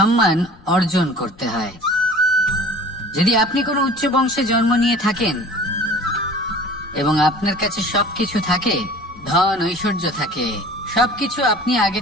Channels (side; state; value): left; noise; rumble, 25 dB below the sound